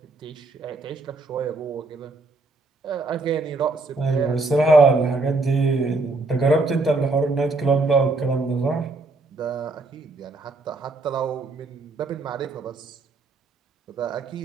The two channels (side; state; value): left; quieter; 3.4 dB